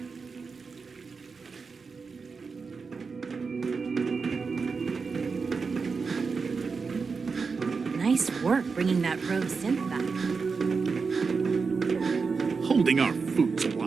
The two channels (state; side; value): quieter; left; 4.9 dB